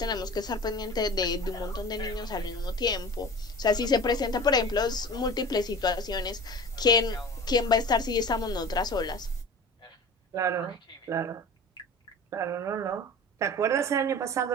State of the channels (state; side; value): normal; both; correlation 0.37